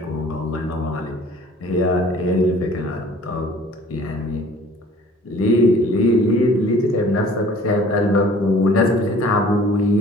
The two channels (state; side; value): normal; both; correlation 0.51